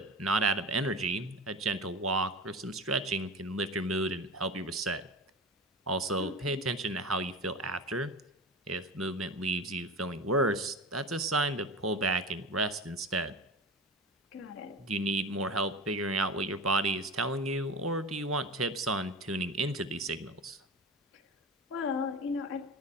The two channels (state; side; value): normal; both; correlation 0.30